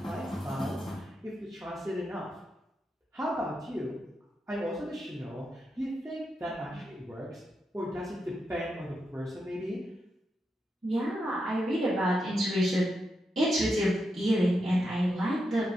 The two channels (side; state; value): both; normal; correlation 0.85